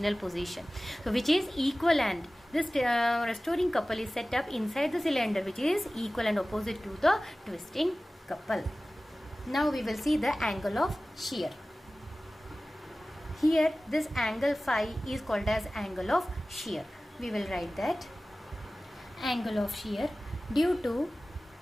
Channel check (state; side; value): normal; both; correlation 0.97